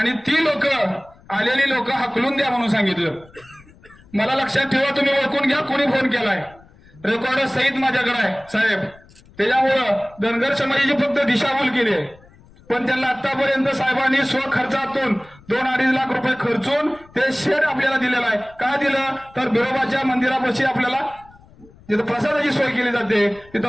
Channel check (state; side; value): noise; left; rumble, 26 dB below the sound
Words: ती आलेली लोक हकलून द्या म्हणून सांगितलं. मला लक्षात ठेवा, तुम्ही ओळखून घ्या कोणी फोन केलाय, रेकॉर्ड सहित माझ्याकडे आहे साहेब. त्याच्यामुळं धनगर समाजाची फक्त दिशाभूल केली आहे, पण त्यांना आतापर्यंत साहेबांनी स्वखर्चातून 2-2.5 लाख रुपये खर्चून ते शेड आपल्याला दिलेलं आहे. का दिलं तर बिरोबाच्या मंदिरापाशी आपल्याला जिथं प्रसादाची सोय केली जाते,